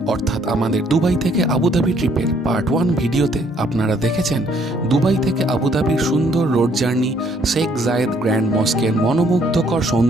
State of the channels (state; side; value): normal; both; correlation 0.65